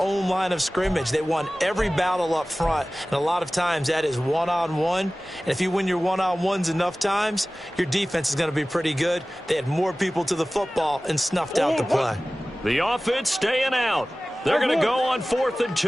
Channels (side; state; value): both; normal; correlation 0.97